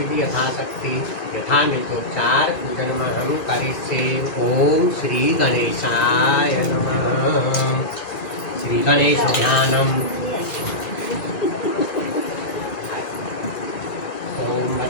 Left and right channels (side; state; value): right; late; 2.3 ms